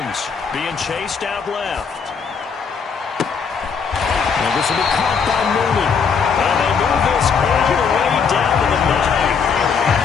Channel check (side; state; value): right; quieter; 6.0 dB